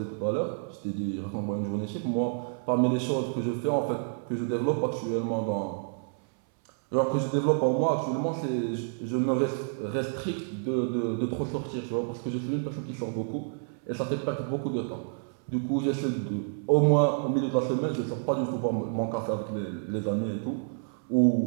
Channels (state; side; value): silent; left; 59 dB below the other